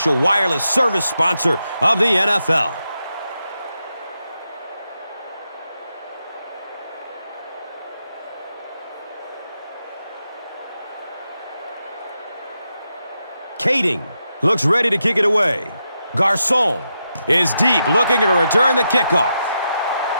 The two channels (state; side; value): inverted; both; correlation -0.85